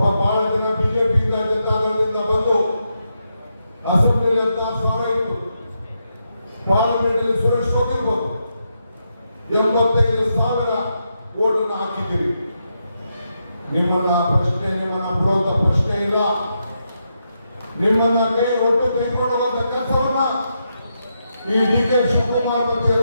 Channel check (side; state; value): both; inverted; correlation -0.83